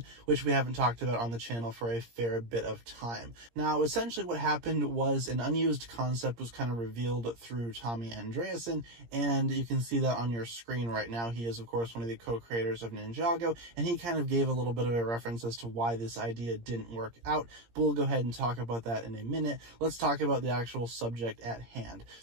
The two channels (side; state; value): left; late; 17 ms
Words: which we haven't talked about on the channel for a fair bit of time. Now, essentially what happened was an unused concept was kind of revealed through Tommy Andreasen, and you can see that on your screen right now. He is, of course, one of the co-creators of Ninjago, and he kind of gave a little bit of a reference as to why this idea didn't work out, but we'll go ahead and talk about that in a minute. Let's talk about the actual subject at hand.